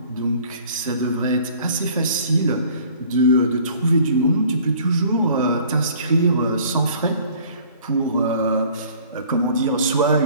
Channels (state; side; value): inverted; both; correlation -0.52